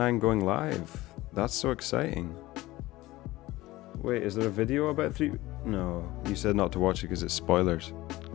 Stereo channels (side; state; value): right; quieter; 18.3 dB